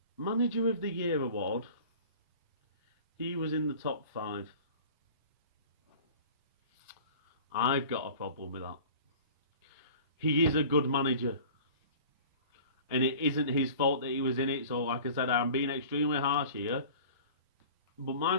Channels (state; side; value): inverted; both; correlation -0.43